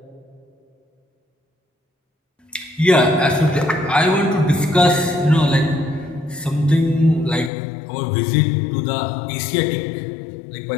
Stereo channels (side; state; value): right; drops out; at 7.5 s